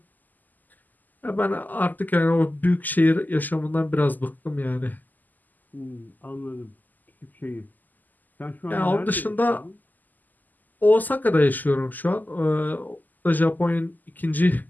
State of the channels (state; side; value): late; right; 0.084 ms